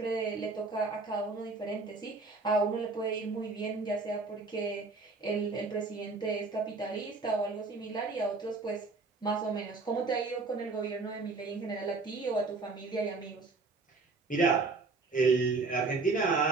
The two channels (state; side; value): quieter; left; 3.9 dB